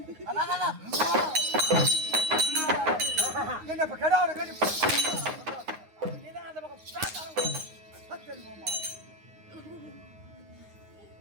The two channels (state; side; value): late; left; 9.6 ms